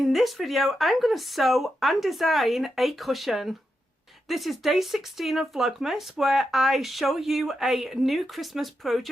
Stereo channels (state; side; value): normal; both; correlation 0.86